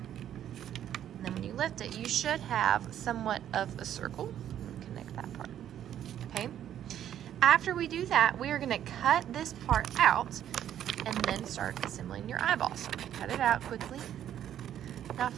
And then when you lift it, you should have somewhat of a circle. Connect that part. Okay. After we do that, we are going to cut this part out and then start assembling your eyeball. So I'm going to cut it out quickly. Now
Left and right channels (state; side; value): quieter; left; 10.6 dB